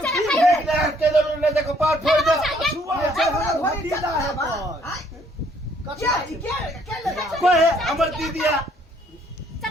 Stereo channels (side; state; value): both; normal; correlation 0.65